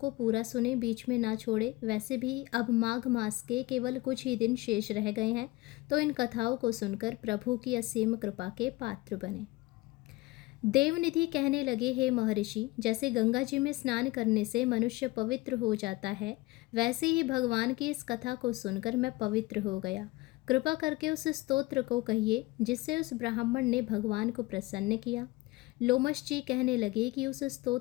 पूरा सुने, बीच में ना छोड़े। वैसे भी अब माघ मास के केवल कुछ ही दिन शेष रह गए हैं, तो इन कथाओं को सुनकर प्रभु की असीम कृपा के पात्र बने। देवनिधि कहने लगे, हे महर्षि, जैसे गंगा जी में स्नान करने से मनुष्य पवित्र हो जाता है, वैसे ही भगवान की इस कथा को सुनकर मैं पवित्र हो गया। कृपा करके उस स्तोत्र को कहिए जिससे उस ब्राह्मण ने भगवान को प्रसन्न किया। लोमश जी कहने लगे कि उस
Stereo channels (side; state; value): right; quieter; 20.7 dB